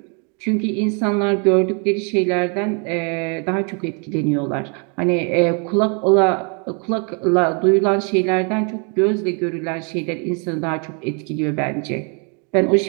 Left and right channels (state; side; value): quieter; left; 37.2 dB